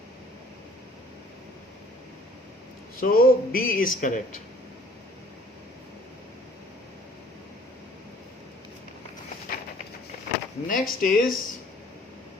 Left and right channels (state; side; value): normal; both; correlation 0.55